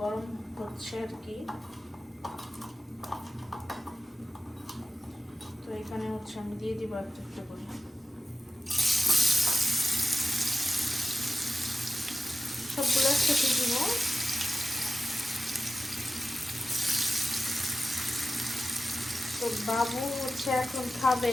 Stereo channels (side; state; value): both; normal; correlation 0.93